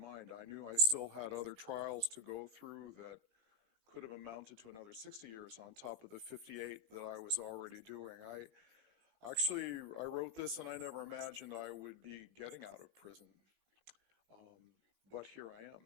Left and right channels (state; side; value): late; left; 18 ms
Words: I knew I still had other trials to go through that could have amounted to another 60 years on top of the 58 that I was already doing. I wrote this and I never imagined I would be getting out of prison. Um, but here I